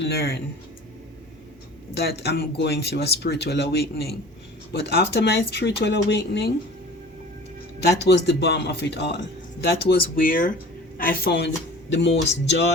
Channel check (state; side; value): normal; both; correlation 0.43